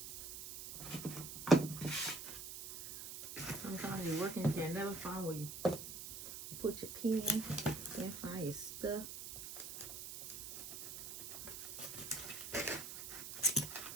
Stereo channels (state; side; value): noise; right; hiss, 9 dB below the sound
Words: Sometimes you're working, you can never find where you put your pen, can't find your stuff.